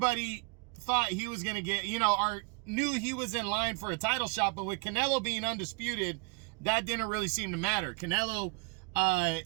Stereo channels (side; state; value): left; quieter; 32.0 dB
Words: thought he was going to get, knew he was in line for a title shot. But with Canelo being undisputed, that didn't really seem to matter. Canelo